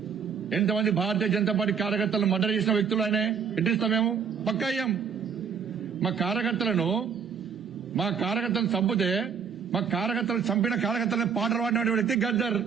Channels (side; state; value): left; quieter; 6.8 dB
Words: ఎంతమంది భారతీయ జనతా పార్టీ కార్యకర్తలను మర్డర్ చేసిన వ్యక్తులు ఆయన ఎట్టిస్తాం మేము? పక్కా అయ్యాం. మా కార్యకర్తలను చంపితే మా కార్యకర్తలను చంపిన కార్యకర్తలను పాటలు పాడిన వ్యక్తి గద్దర్.